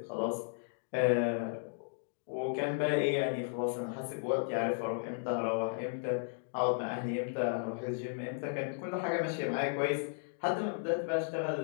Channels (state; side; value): silent; right; digital silence